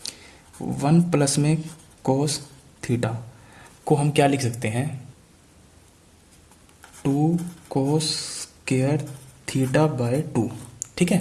1 प्लस में कोस थीटा को हम क्या लिख सकते हैं 2 कोस स्क्वायर थीटा बाय 2, ठीक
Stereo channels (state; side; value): identical; both; correlation 1.00